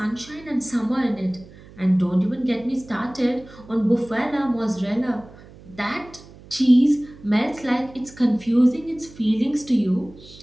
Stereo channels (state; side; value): noise; right; hum, 21 dB below the sound